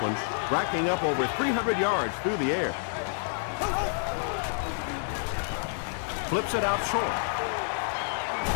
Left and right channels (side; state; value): right; silent; digital silence